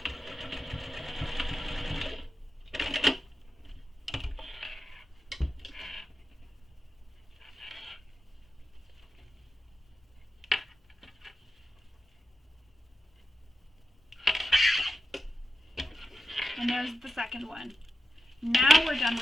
And there's the second one. Now we're done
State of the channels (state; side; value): normal; both; correlation 0.90